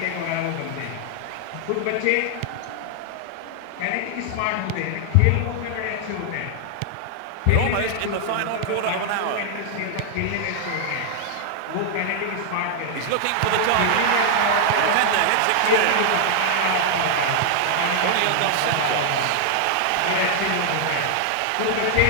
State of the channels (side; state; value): both; different; correlation 0.00